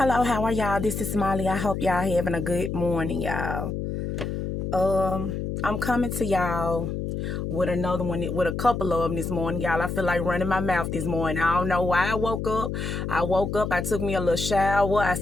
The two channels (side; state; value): left; noise; hum, 3 dB below the sound